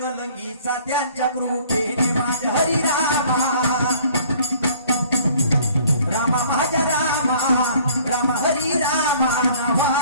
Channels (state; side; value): inverted; both; correlation -0.54